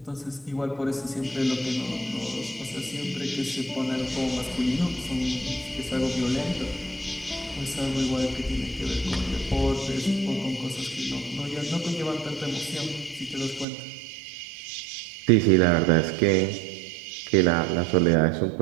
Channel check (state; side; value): drops out; left; at 13.7 s